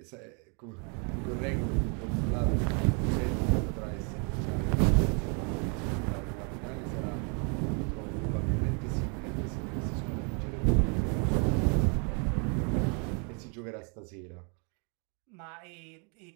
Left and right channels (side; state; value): left; quieter; 36.9 dB